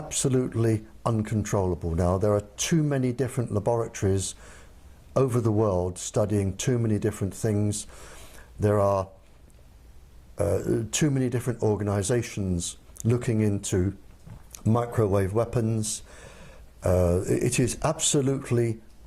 uncontrollable now. There are too many different laboratories over the world studying too many different things. There are too many different organizations looking into microwave weapons. It is absolutely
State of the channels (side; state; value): both; identical; correlation 1.00